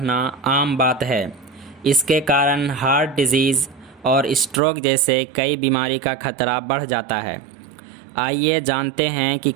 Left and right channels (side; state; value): left; drops out; at 4.6 s